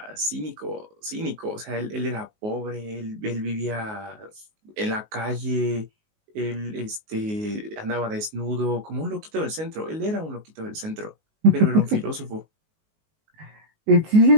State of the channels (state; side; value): late; left; 19 ms